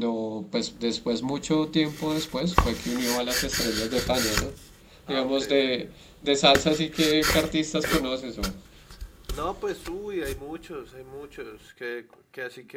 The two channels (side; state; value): both; identical; correlation 1.00